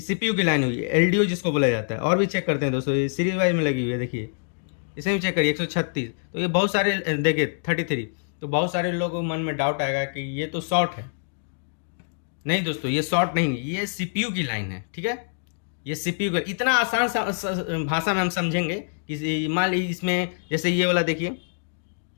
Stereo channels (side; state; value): right; silent; digital silence